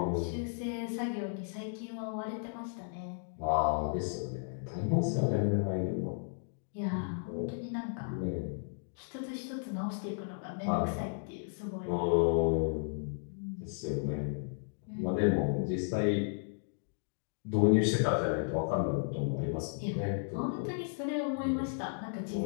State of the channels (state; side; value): silent; right; digital silence